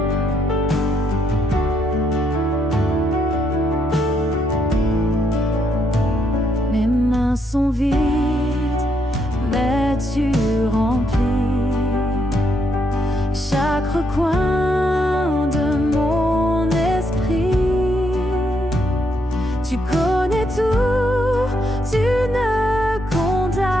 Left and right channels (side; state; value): both; normal; correlation 0.76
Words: Mes mains sont vides, mais tu remplis recoins de mon esprit. Tu connais tout, tu ne condamnes,